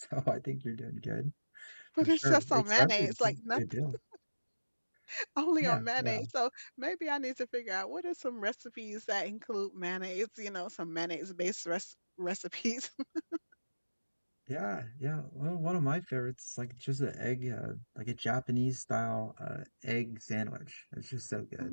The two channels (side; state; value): both; inverted; correlation -1.00